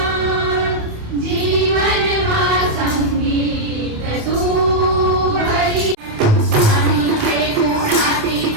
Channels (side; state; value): left; late; 28 ms